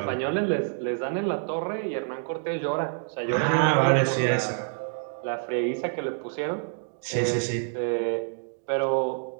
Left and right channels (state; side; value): silent; left; digital silence